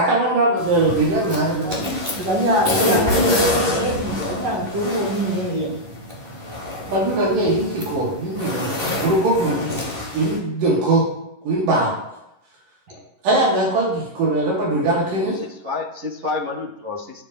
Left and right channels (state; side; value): late; left; 11 ms